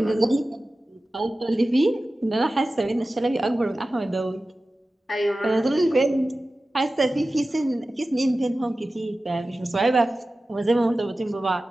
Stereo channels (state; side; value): normal; both; correlation 0.95